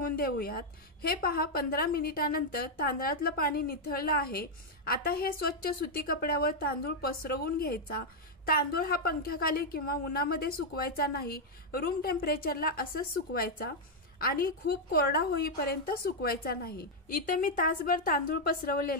देऊयात। हे पहा, 15 मिनिटानंतर तांदळातलं पाणी निथळलं आहे। आता हे स्वच्छ सुती कपड्यावर तांदूळ पसरवून घ्यायचा। तांदूळ हा पंख्याखाली किंवा उन्हामध्ये सुकवायचा नाही, रूम टेम्परेचरला असंच सुकवायचा आणि खूप कोरडा होईपर्यंत सुकवायचा नाही। इथं मी तासभर तांदूळ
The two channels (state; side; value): normal; both; correlation -0.01